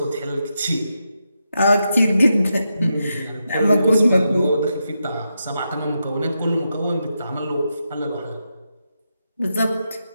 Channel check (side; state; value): both; inverted; correlation -0.85